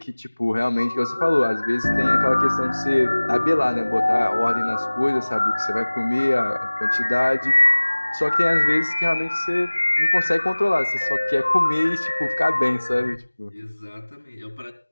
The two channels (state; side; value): inverted; both; correlation -1.00